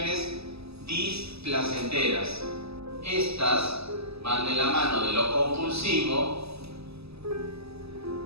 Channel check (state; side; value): late; left; 0.78 ms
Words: displacenteras. Estas van de la mano de lo compulsivo